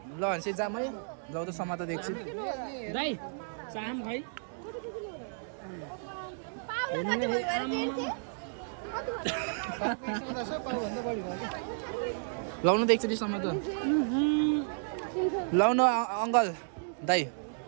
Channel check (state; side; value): silent; left; digital silence